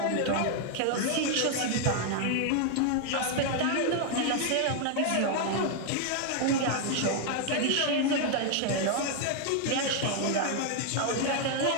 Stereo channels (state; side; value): different; both; correlation 0.00